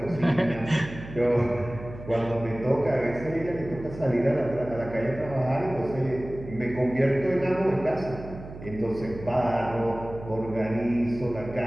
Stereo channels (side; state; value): right; noise; hum, 13 dB below the sound